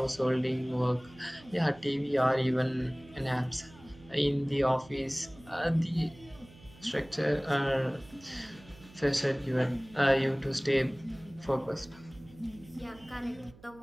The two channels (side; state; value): right; noise; hum, 23 dB below the sound